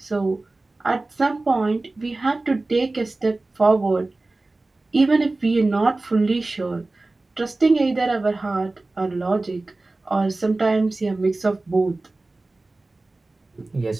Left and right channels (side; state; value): left; quieter; 3.1 dB